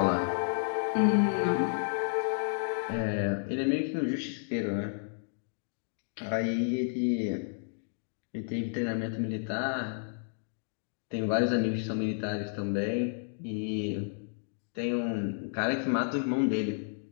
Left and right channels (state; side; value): silent; right; digital silence